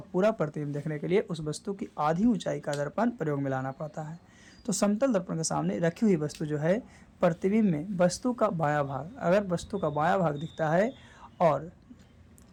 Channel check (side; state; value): both; identical; correlation 1.00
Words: पूरा प्रतिबिंब देखने के लिए उस वस्तु की आधी ऊंचाई का दर्पण प्रयोग में लाना पड़ता है। तो समतल दर्पण के सामने रखी हुई वस्तु जो है प्रतिबिंब में वस्तु का बायां भाग, अगर वस्तु का बायां भाग दिखता है और